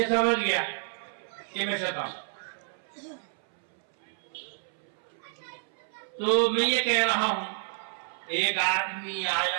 سمجھ گیا کہ میں شیطان۔ تو میں یہ کہہ رہا ہوں، ایک آدمی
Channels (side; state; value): left; silent; 58 dB below the other